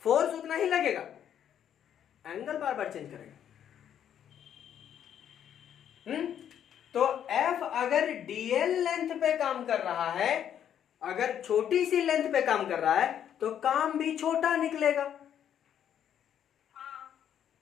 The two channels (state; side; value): quieter; right; 9.6 dB